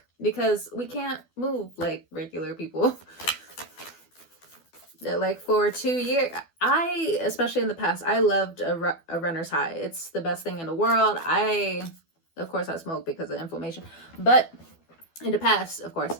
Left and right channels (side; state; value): right; late; 12 ms